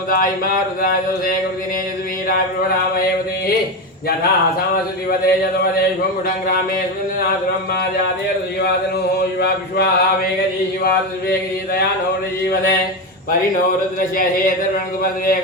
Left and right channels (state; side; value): normal; both; correlation 0.15